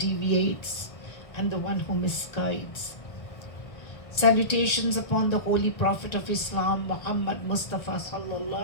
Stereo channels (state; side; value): late; right; 1.9 ms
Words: and the one who misguides. Salutations upon the holy prophet of Islam, Muhammad Mustafa